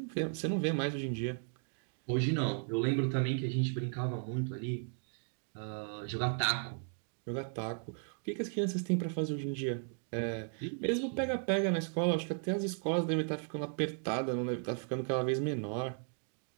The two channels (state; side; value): silent; left; 54 dB below the other